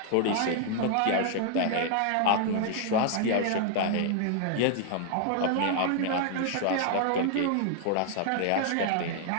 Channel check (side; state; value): both; different; correlation -0.01